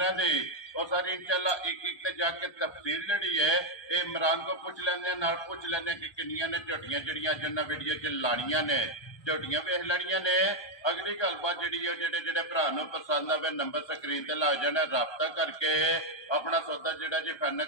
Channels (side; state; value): right; late; 1.2 ms